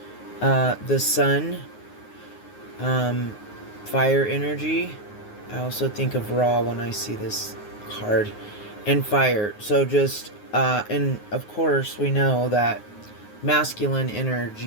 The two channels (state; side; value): late; right; 9.5 ms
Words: the sun, fire energy. I also think of Ra when I see this card, and fire. So just and of course we know that masculine